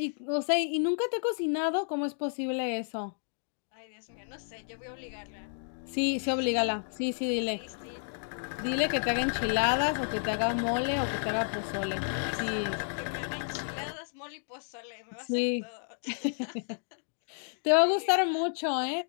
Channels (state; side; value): silent; right; digital silence